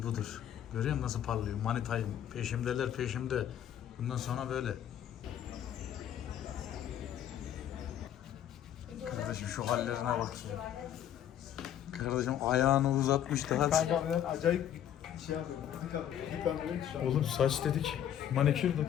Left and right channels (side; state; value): right; quieter; 10.4 dB